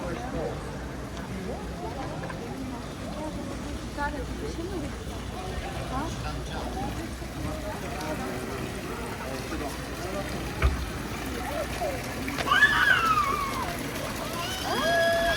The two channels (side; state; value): both; identical; correlation 1.00